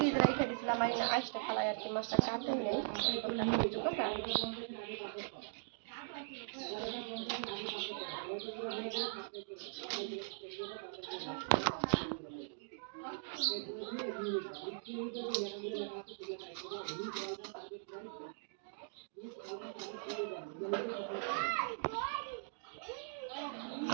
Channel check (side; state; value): left; silent; digital silence